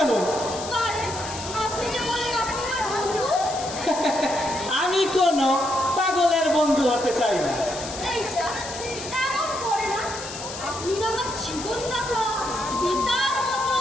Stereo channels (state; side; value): noise; left; hiss, 10 dB below the sound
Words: আরে, আপনি যে বলেন আপনি আমার বন্ধু। আমি কোনো পাগলের বন্ধু হতে চাই না। এই যা, এমন করে না। আপনি না আমার জীবনদাতা, পিতার মতো।